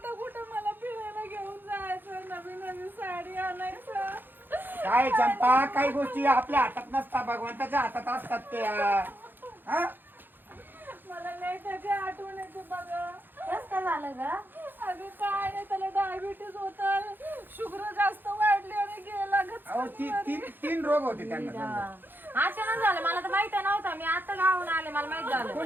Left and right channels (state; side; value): late; left; 0.094 ms